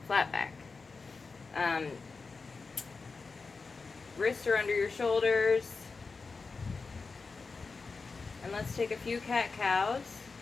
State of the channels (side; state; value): right; quieter; 4.4 dB